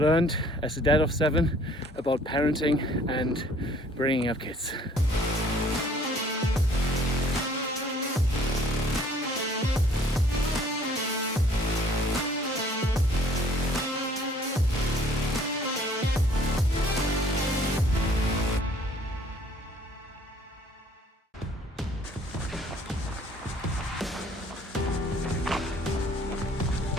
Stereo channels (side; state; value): both; normal; correlation 0.57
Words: as a dad of 7 about parenting and bringing up kids.